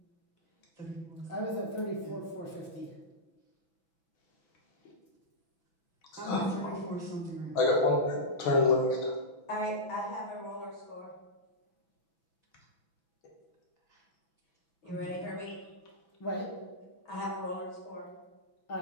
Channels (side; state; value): right; late; 6.0 ms